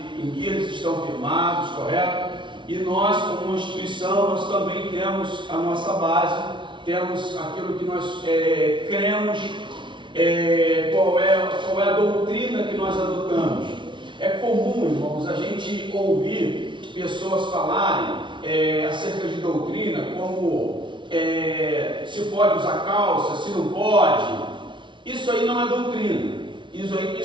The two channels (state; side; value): late; left; 0.24 ms